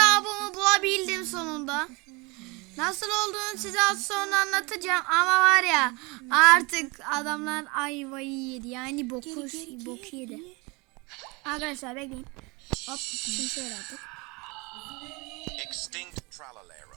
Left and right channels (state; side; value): quieter; left; 27.4 dB